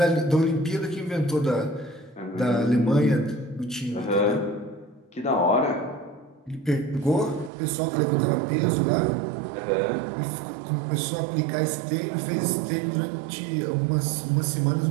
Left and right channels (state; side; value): drops out; left; at 7.5 s